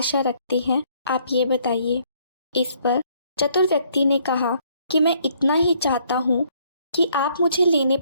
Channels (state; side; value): inverted; both; correlation -0.66